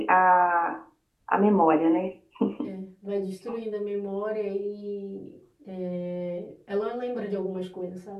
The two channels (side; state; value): both; identical; correlation 1.00